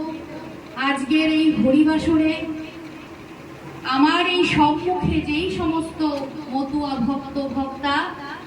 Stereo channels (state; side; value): identical; both; correlation 1.00